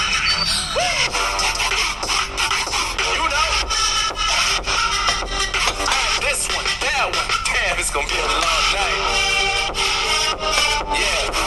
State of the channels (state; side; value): identical; both; correlation 1.00